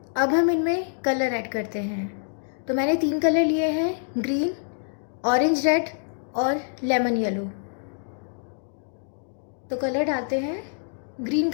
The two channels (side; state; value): right; silent; digital silence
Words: अब हम इनमें कलर ऐड करते हैं। तो मैंने 3 कलर लिए हैं, ग्रीन, ऑरेंज रेड और लेमन येलो। तो कलर डालते हैं। ग्रीन